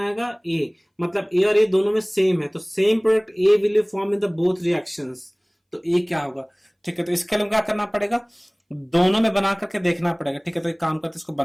A, मतलब A और A दोनों में सेम है, तो same product A will form in the both reactions. तो A क्या होगा, ठीक है। तो इसके लिए क्या करना पड़ेगा, दोनों में बना करके देखना पड़ेगा, ठीक है। तो एक काम करते हैं, इसको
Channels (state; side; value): identical; both; correlation 1.00